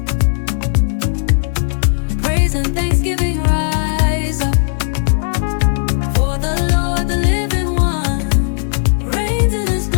Praise and thanksgiving rise up. For the Lord, the living one, reigns in his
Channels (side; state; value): right; silent; digital silence